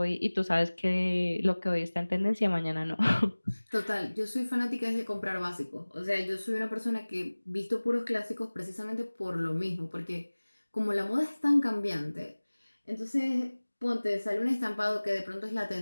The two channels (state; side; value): inverted; both; correlation -1.00